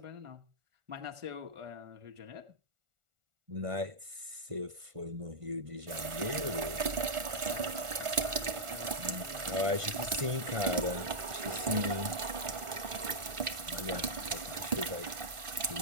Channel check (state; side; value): late; left; 1.4 ms